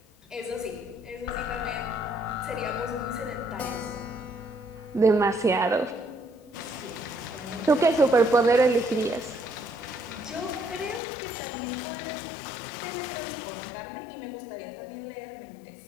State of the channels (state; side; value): drops out; right; at 11.0 s